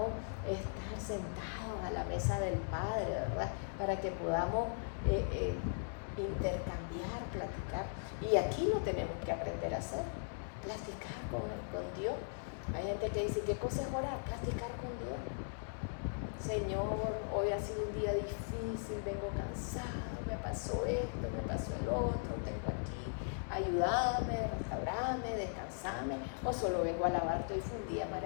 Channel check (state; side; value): silent; right; digital silence